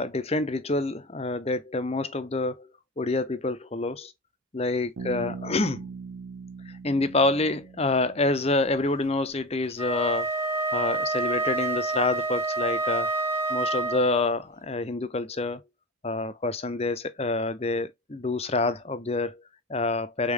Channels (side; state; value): both; normal; correlation 0.25